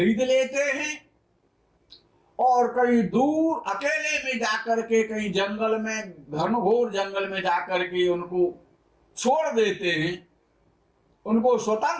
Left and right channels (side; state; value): both; identical; correlation 1.00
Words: लेते हैं और कहीं दूर अकेले में जाकर के, कहीं जंगल में, घनघोर जंगल में जाकर के उनको छोड़ देते हैं, उनको